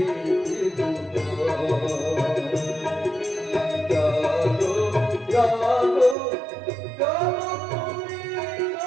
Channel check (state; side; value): drops out; left; at 6.2 s